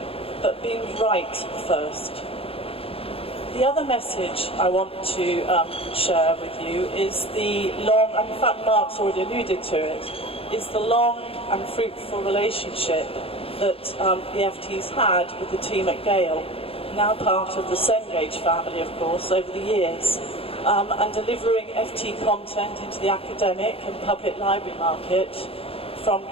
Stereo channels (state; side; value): late; right; 0.27 ms